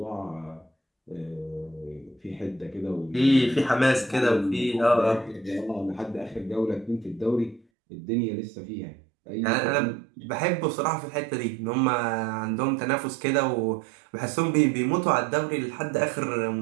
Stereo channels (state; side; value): drops out; left; at 7.6 s